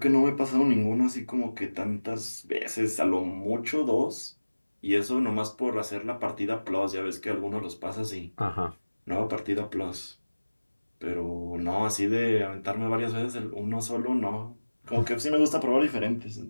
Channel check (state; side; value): inverted; both; correlation -1.00